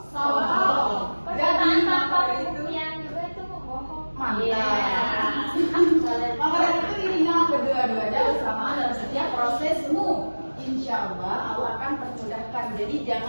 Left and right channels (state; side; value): inverted; both; correlation -1.00